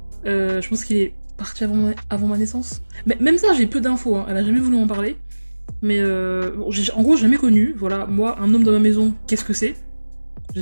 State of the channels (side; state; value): both; inverted; correlation -1.00